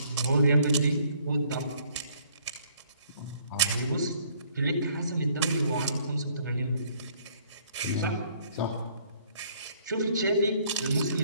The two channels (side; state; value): both; inverted; correlation -0.62